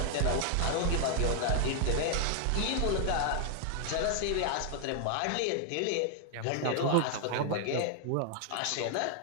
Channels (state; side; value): different; both; correlation 0.00